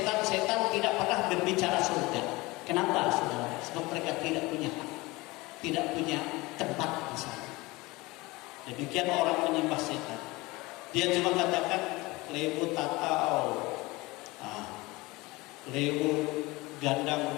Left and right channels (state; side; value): quieter; right; 22.2 dB